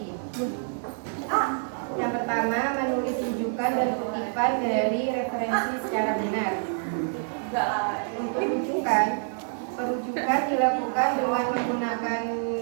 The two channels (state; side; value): silent; left; 60 dB below the other